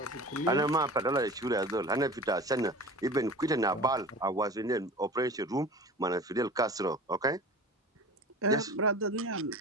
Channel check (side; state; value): both; normal; correlation 0.37